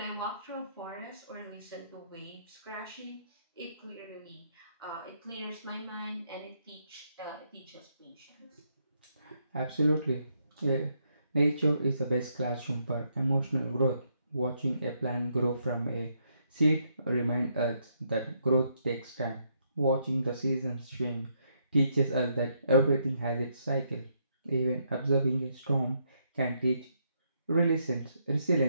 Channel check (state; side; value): inverted; both; correlation -0.75